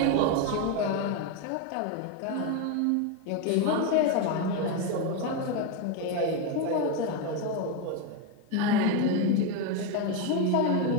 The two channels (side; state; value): both; different; correlation 0.02